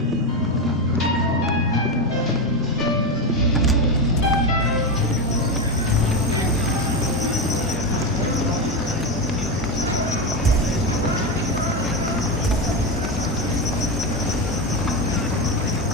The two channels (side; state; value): both; normal; correlation 0.13